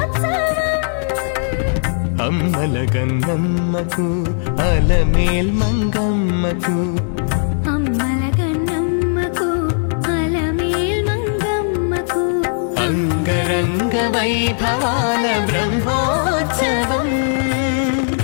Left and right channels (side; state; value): right; silent; digital silence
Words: అమ్మల గన్నమ్మకు అలమేల్ మంగమ్మకు అమ్మల గన్నమ్మకు అలమేల్ మంగమ్మకు అంగరంగ వైభవాల బ్రహ్మోత్సవం